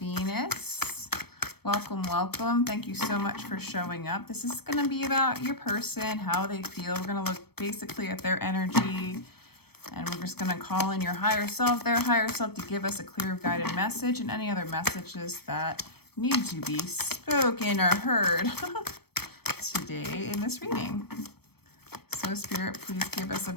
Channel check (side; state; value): right; late; 0.97 ms